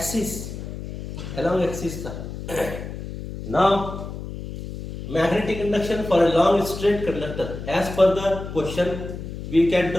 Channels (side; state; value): left; noise; hum, 9 dB below the sound